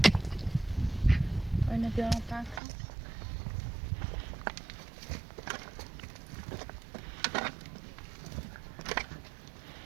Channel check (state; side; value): drops out; left; at 2.6 s